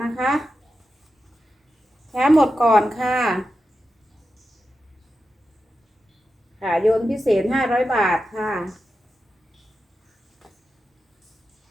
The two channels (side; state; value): both; normal; correlation 0.90